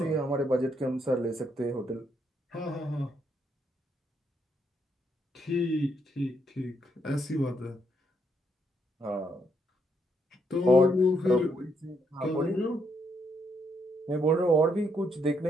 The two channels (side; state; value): both; normal; correlation 0.75